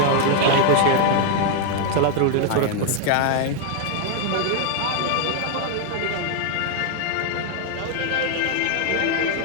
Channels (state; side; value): different; both; correlation 0.00